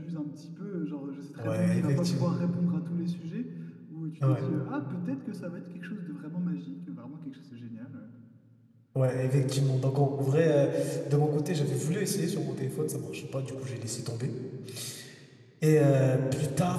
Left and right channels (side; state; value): both; identical; correlation 1.00